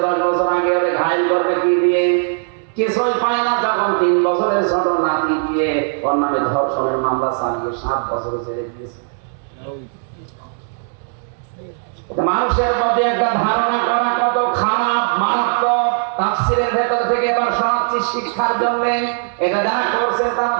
10 বছর আগে, ওরে ঘায়ল করবে কি দিয়ে, কিছুই পায় না। যখন 3 বছরের ছোট নাতি দিয়ে ওর নামে ধর্ষণের মামলা চালিয়ে 7 বছর জেলে দিয়েছে। মানুষের প্রতি একটা ধারণা করা কত খারাপ, মারাত্মক। তাফসীরের ভেতর থেকে এবার শোনাচ্ছি শিক্ষার জন্য। এটা যারা করছেন তারা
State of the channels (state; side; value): silent; left; digital silence